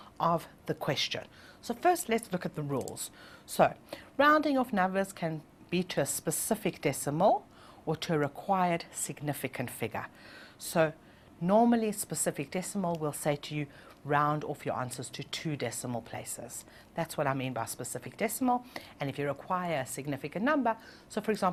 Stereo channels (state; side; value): identical; both; correlation 1.00